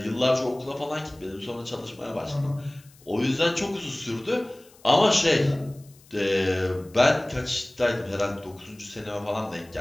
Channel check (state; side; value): noise; left; hiss, 27 dB below the sound